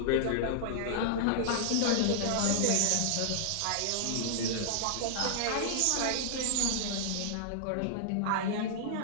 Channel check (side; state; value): both; different; correlation -0.01